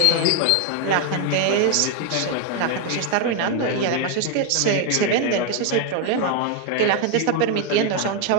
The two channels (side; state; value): both; different; correlation 0.01